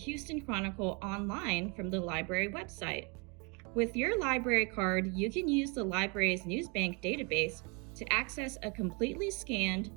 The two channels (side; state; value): left; quieter; 31.9 dB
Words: Chronicle online from the library website. With your library card, you can use the library's NewsBank database to access a completely scanned,